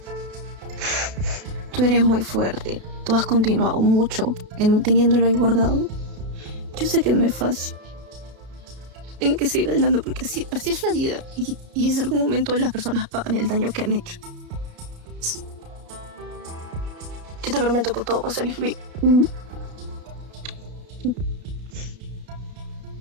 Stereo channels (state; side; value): late; left; 32 ms